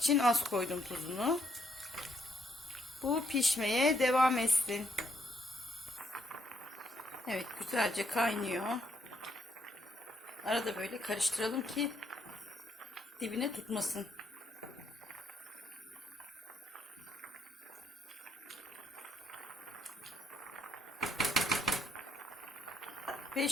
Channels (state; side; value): normal; both; correlation 0.73